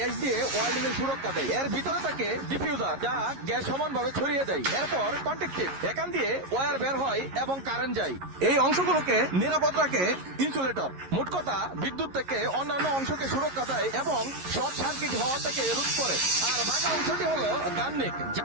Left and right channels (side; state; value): left; late; 11 ms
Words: দিয়ে ওয়েল্ডিং এর সুরক্ষা দেয়। এর ভিতরে থাকে ডিফিউজার, যা গ্যাস সমানভাবে ছড়িয়ে দেয়। এরপর কন্ট্যাক্টিভ, এখান দিয়ে ওয়্যার বের হয় এবং কারেন্ট যায়। এই অংশগুলোকে নিরাপদ রাখে ইনসুলেটর। মোট কথা, বিদ্যুৎ থেকে অন্যান্য অংশকে সুরক্ষা দেয় এবং শর্ট সার্কিট হওয়া থেকে রোধ করে। আর বাঁকা অংশটি হলো গাননিক,